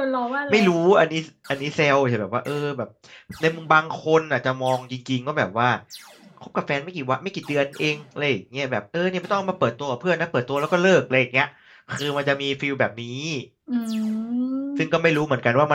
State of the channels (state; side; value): identical; both; correlation 1.00